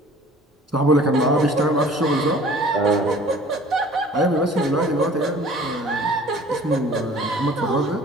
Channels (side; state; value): both; normal; correlation 0.49